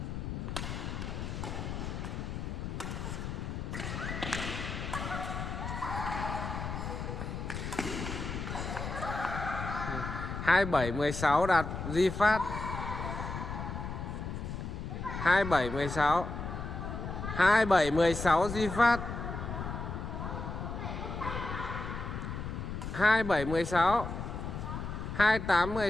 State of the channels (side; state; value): left; noise; rumble, 5 dB below the sound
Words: Hai 7 16 Đạt Duy Phát. 27 16 27 16 Duy Phát. 27 16 28